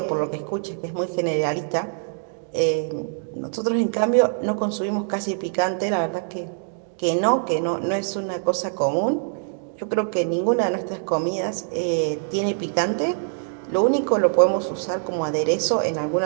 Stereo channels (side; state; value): left; silent; digital silence